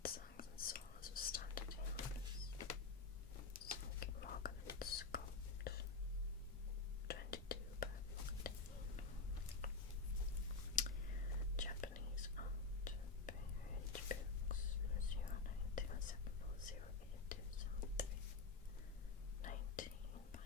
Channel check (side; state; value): right; quieter; 4.3 dB